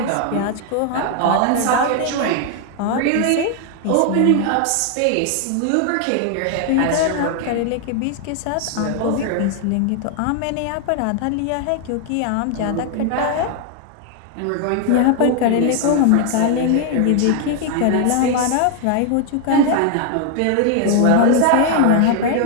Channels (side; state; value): both; different; correlation 0.00